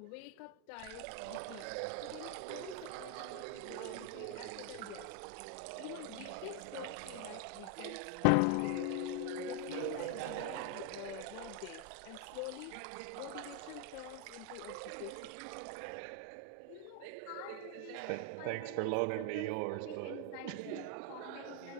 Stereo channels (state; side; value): different; both; correlation 0.01